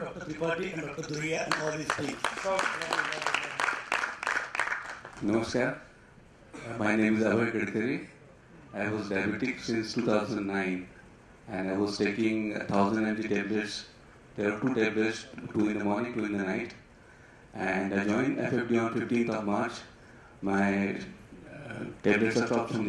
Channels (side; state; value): both; identical; correlation 1.00